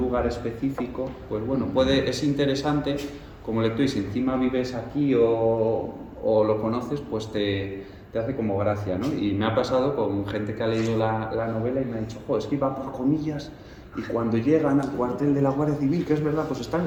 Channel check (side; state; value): both; identical; correlation 1.00